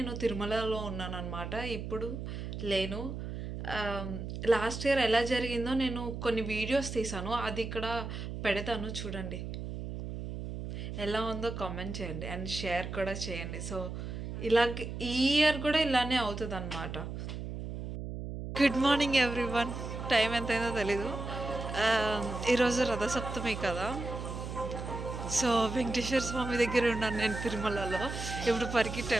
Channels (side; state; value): right; noise; hum, 6 dB below the sound